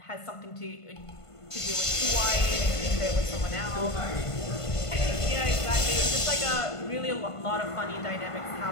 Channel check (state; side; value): late; right; 1.5 ms